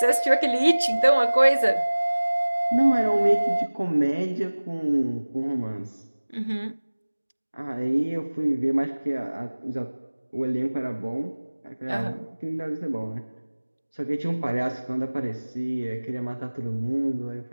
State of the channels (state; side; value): inverted; both; correlation -1.00